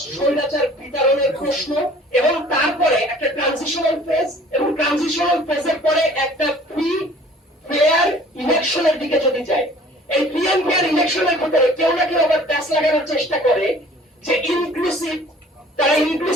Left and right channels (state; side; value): normal; both; correlation 0.51